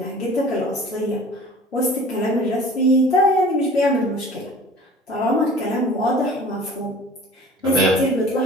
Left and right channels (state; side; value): normal; both; correlation 0.45